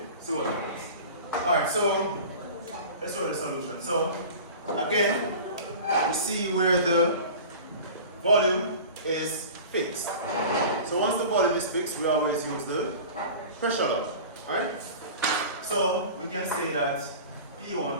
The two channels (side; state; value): both; inverted; correlation -0.37